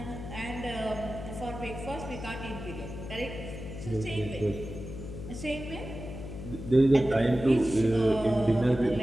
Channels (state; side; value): noise; left; hum, 10 dB below the sound